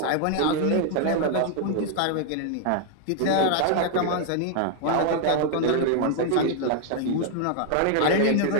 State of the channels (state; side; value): different; both; correlation 0.00